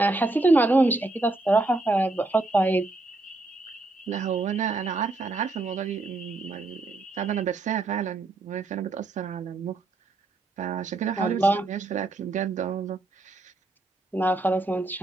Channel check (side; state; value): left; quieter; 3.1 dB